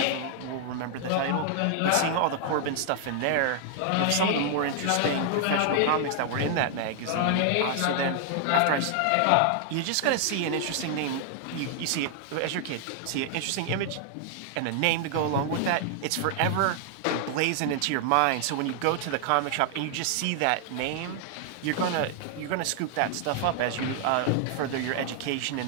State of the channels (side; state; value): both; different; correlation 0.00